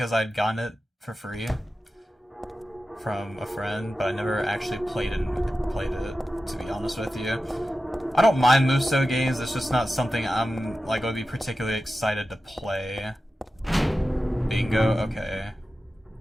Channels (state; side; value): normal; both; correlation 0.93